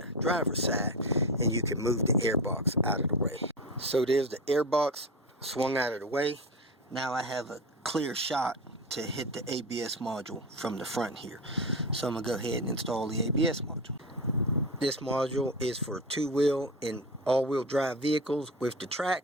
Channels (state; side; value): normal; both; correlation 0.24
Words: driver's side and you can move the airbox out of the way. So there's the airbox swung out of the way. Now I have a clear shot to hit the ABS module from the front here. So I'm going to go ahead and install the ABS module. This module is for two-wheel and all-wheel drive vehicles with the